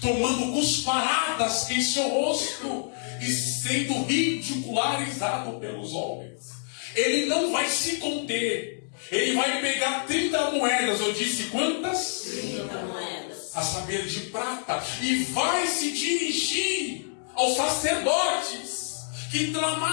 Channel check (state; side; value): silent; right; digital silence